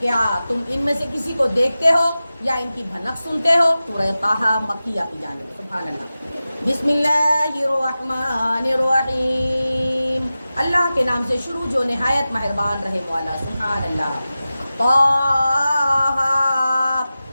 کیا تم ان میں سے کسی کو دیکھتے ہو یا ان کی بھنک سنتے ہو. سورہ طٰہٰ مکیہ کی جانب. سبحان اللہ. بسم اللہ الرحمن الرحیم، اللہ کے نام سے شروع جو نہایت مہربان رحم والا. سبحان اللہ. طٰہٰ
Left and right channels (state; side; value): inverted; both; correlation -0.95